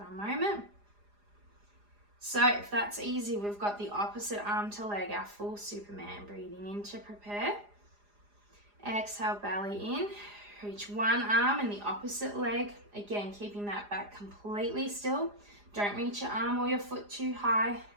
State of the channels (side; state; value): left; late; 4.9 ms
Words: a moment. So if that's easy, we've got the opposite arm to leg, our full Superman. Breathing in to prepare. Exhale, belly in. Reach one arm and the opposite leg. Again, keeping that back completely still. Don't reach your arm or your foot too high.